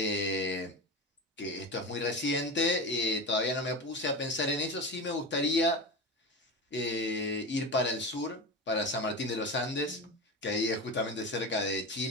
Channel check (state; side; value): normal; both; correlation 0.25